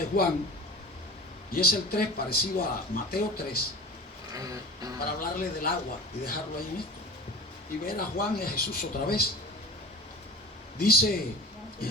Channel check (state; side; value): normal; both; correlation 0.35